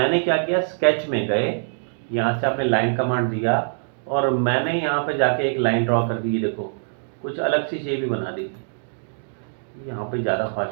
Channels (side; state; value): left; silent; digital silence